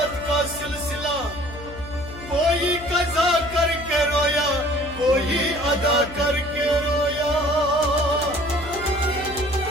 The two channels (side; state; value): left; noise; hum, 14 dB below the sound